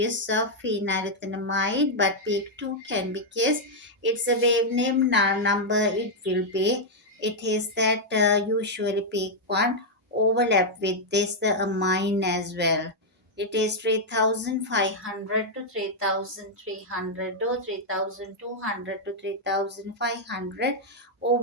of phenylethanamide, but peak 2 can because it's a wave name number, it will be it is that usually peak 1 overlap with this the amine as well. It is 3500 to 3300 or 3200 to 3500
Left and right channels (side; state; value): both; normal; correlation -0.03